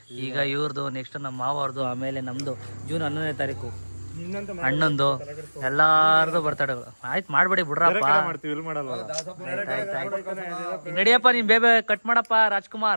ಈಗ ಇವ್ರದ್ದು, ನೆಕ್ಸ್ಟ್ ನಮ್ಮ ಮಾವವ್ರದ್ದು, ಆಮೇಲೆ ನಮ್ದು ಜೂನ್ 11ನೇ ತಾರೀಕು ಅಣ್ಣಂದು, ಎಲ್ಲಾರ್ದು ಬರ್ತಡೇಗಳು. ಆಯ್ತು ಮಾಡ್ಬೇಡಿ ಬಿಡ್ರಪ್ಪ. ನಡಿಯಪ್ಪ, ನೀನ್ ಬೇಬೆ ಕಟ್ ಮಾಡಪ್ಪ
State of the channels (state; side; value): inverted; both; correlation -1.00